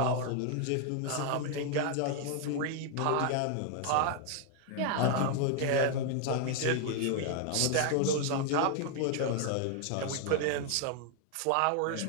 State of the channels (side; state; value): both; different; correlation 0.00